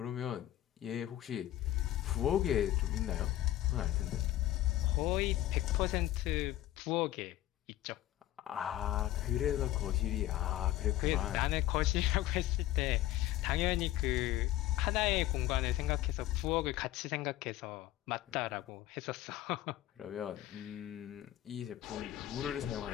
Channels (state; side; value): quieter; right; 14.2 dB